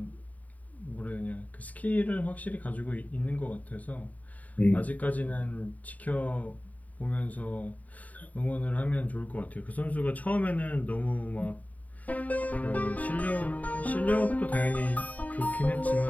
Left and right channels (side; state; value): right; late; 0.072 ms